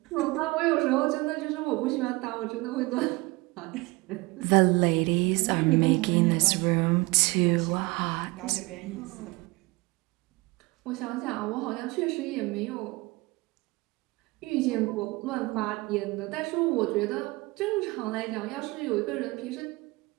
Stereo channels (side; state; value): left; quieter; 23.5 dB